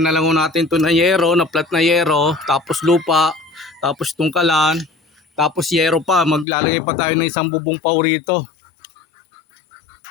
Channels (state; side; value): drops out; right; at 6.5 s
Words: na lang natin ito na yero, na flat na yero. Tapos lupa. Tapos tungkalan. Tapos yero pa. Maglalagay pa tayo ng isang bubong pau rito.